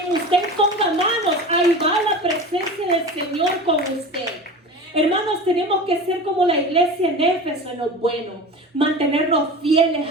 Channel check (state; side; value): normal; both; correlation 0.32